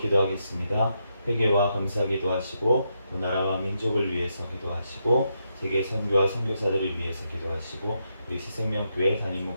회개와 감사 기도하시고 그 나라와 민족을 위해서 기도하시고 세계 선교와 선교사들을 위해서 기도하시고 우리 새생명교회 담임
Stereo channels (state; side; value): inverted; both; correlation -0.82